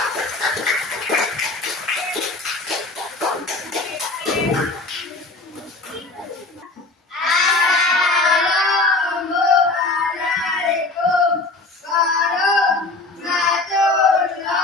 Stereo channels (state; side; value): quieter; right; 3.2 dB